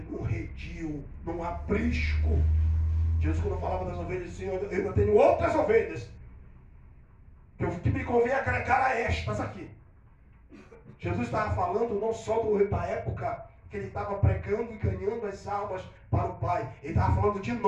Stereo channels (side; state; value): both; identical; correlation 1.00